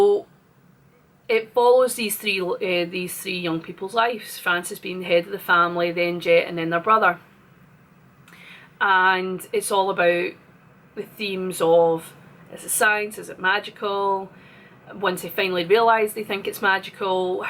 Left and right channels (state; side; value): identical; both; correlation 1.00